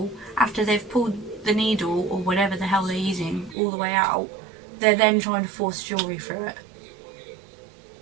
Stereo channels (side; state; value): left; drops out; at 3.6 s